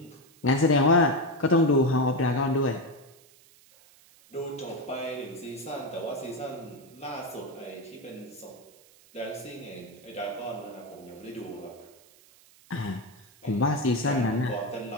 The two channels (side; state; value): right; noise; hiss, 27 dB below the sound